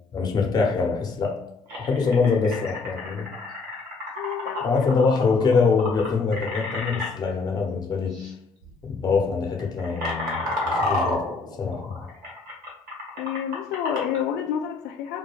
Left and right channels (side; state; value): right; quieter; 4.4 dB